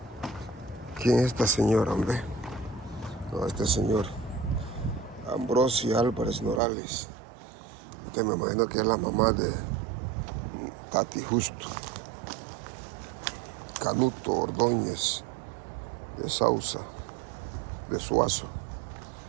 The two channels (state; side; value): drops out; left; at 6.6 s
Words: ¿Quién es esta señora, hombre? No, este señor Ambrosio Álvarez Norales, que me imagino que es la mamá de Tati Justo. Canuto Ordóñez de Sausa, de Suazo.